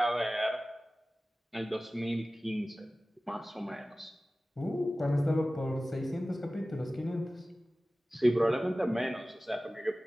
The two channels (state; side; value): normal; both; correlation 0.97